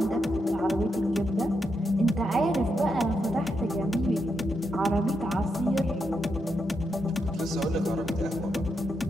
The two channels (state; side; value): normal; both; correlation 0.83